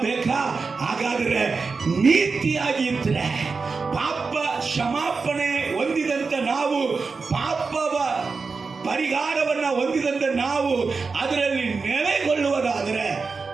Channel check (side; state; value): left; quieter; 4.6 dB